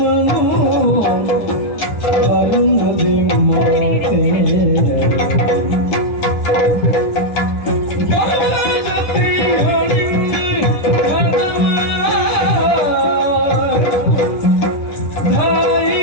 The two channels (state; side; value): late; right; 10 ms